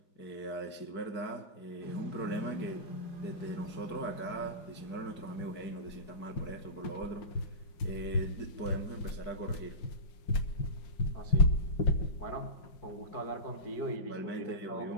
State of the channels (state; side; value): late; right; 5.5 ms